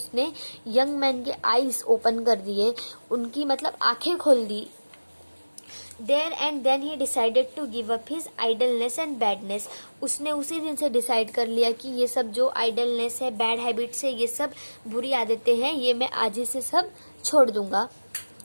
यंग मैन के आइज ओपन कर दिए, उनकी मतलब आंखें खोल दी। There and then he decided to give up his idleness and badness। उसने उसी दिन से डिसाइड कर लिया कि ये सब जो आइडलनेस है, बैड हैबिट्स है, ये सब बुरी आदतें हैं, ये मैं आज ही से सब छोड़ दूंगा।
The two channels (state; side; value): inverted; both; correlation -1.00